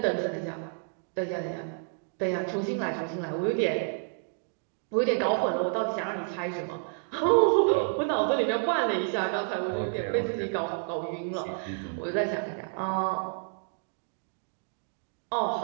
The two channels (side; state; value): left; silent; 58 dB below the other